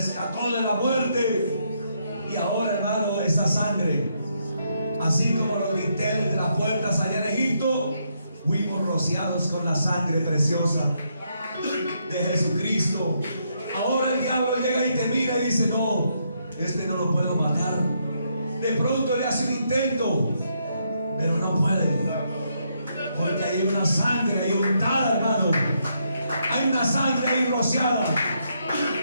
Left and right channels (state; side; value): inverted; both; correlation -0.76